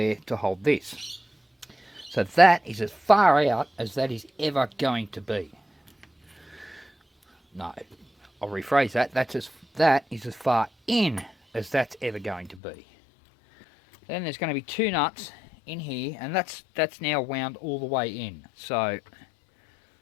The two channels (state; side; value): drops out; right; at 12.6 s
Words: to hold this. So that is as far out as that is ever going to be. No, I'll rephrase that. That is as far in as that's ever going to be. Then there's going to be two nuts in here, and that's now wound all the way in. So